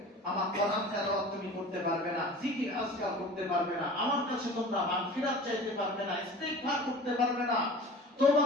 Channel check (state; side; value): normal; both; correlation 0.40